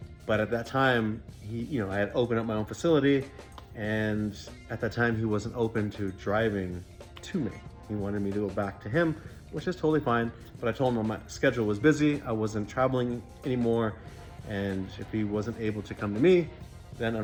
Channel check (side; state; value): both; identical; correlation 1.00